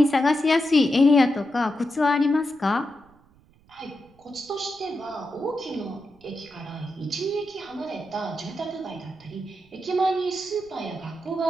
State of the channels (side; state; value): right; noise; rumble, 29 dB below the sound